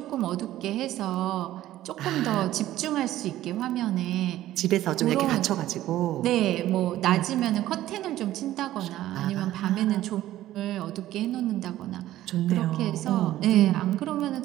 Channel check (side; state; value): left; quieter; 14.2 dB